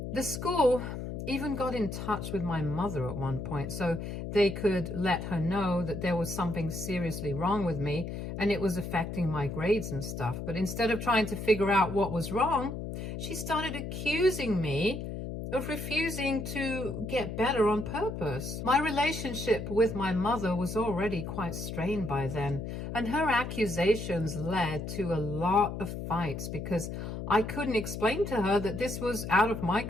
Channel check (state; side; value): noise; left; hum, 6 dB below the sound